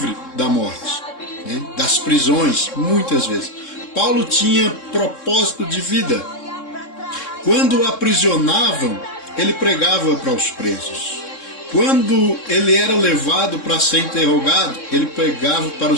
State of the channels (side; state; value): right; late; 3.7 ms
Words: da morte, né? Das prisões, muitas vezes. Paulo tinha propósito de vida. Quando o aprisionavam, ele pregava para os presos. Quando ele era levado para ser interrogado, ele pregava para